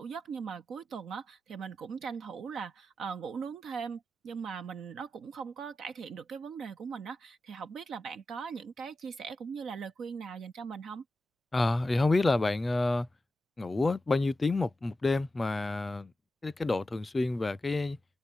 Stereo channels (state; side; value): normal; both; correlation 0.92